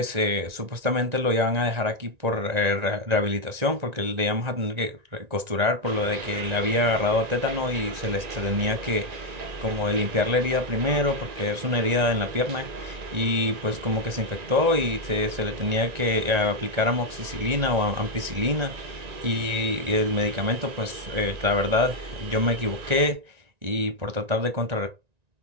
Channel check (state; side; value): late; left; 1.9 ms